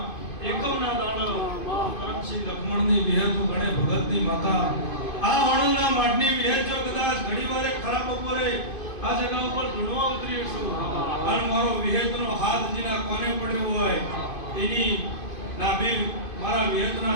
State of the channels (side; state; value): right; late; 2.5 ms